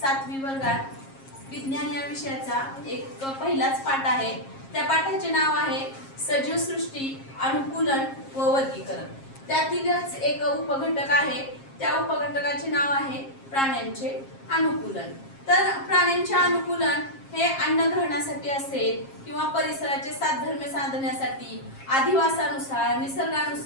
5वी वर्गात विज्ञान या विषयाचा एक पहिलाच पाठ आहे। त्या पाठाचे नाव आहे सजीव सृष्टी, अनुकूलन व वर्गीकरण। त्यातीलच एक उपघटक आहे, त्या उपघटकाचे नाव आहे प्राण्यांचे अनुकूलन। तर प्राण्यांचे अनुकूलन हे अन्न ग्रहणासाठी असेल किंवा परिसराचे साधर्म्य साधण्यासाठी, अधिवासानुसार,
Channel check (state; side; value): late; right; 7.4 ms